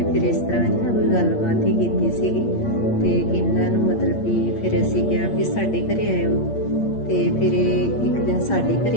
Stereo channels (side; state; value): right; late; 8.7 ms